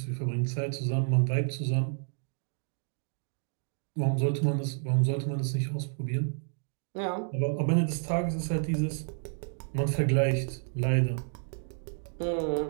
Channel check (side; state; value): left; silent; 58 dB below the other